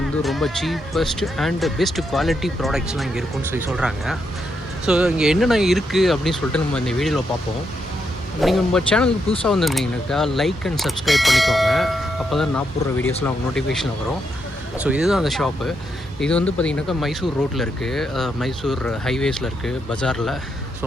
ரொம்ப சீப்பஸ்ட் அண்ட் பெஸ்ட் குவாலிட்டி ப்ராடக்ட்ஸ்லாம் இங்கே இருக்குன்னு சொல்கிறாங்க. ஸோ இங்கே என்னென்ன இருக்குது அப்படின்னு சொல்லிட்டு நம்ம இந்த வீடியோவில் பார்ப்போம். நீங்கள் நம்ம சேனலுக்கு புதுசாக வந்திருந்தீங்கன்னாக்கா லைக் அண்ட் சப்ஸ்கிரைப் பண்ணிக்கோங்க. அப்போ தான் நான் போடுற வீடியோஸ்லாம் அவங்க நோட்டிஃபிகேஷன் வரும். ஸோ இதுதான் அந்த ஷாப்பு. இது வந்து பார்த்திங்கனாக்கா மைசூர் ரோட்டில் இருக்குது, மைசூர் ஹைவேஸில் இருக்குது, பஜாரில். ஸோ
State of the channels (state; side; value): normal; both; correlation 0.80